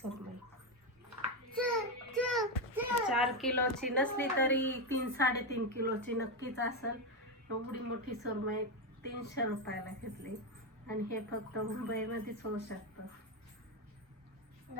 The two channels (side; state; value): both; normal; correlation 0.09